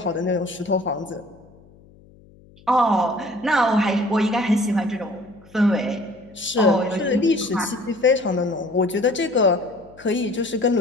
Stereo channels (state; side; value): noise; left; hum, 26 dB below the sound